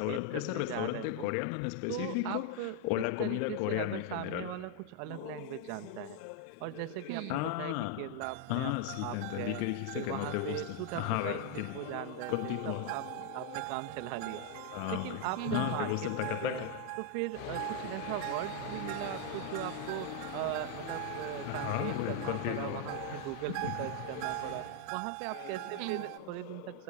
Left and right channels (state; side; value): different; both; correlation 0.00